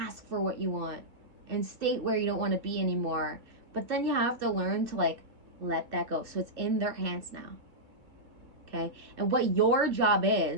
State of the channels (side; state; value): left; late; 2.5 ms